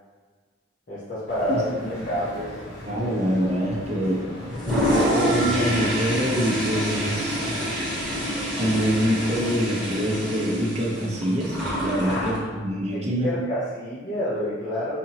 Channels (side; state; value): both; normal; correlation 0.55